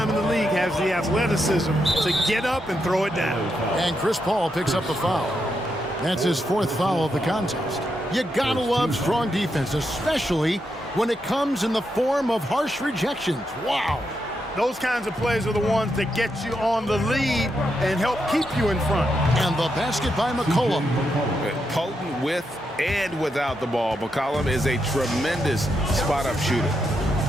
in the league, has the athleticism to get up and throw it down. And Chris Paul picks up the foul. That's his 4th foul of the contest. You gotta love strong defense, especially when it comes in the form of harsh rejections. Wow. Those kinds of plays are the ones that get you on the lead and help keep you in front. And the basket by McCollum. Potent with and without the ball. McCollum is a tremendous spot-up shooter.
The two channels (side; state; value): both; normal; correlation 0.83